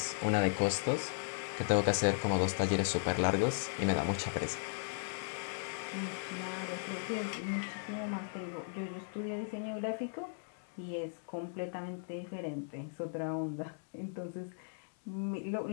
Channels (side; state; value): right; silent; digital silence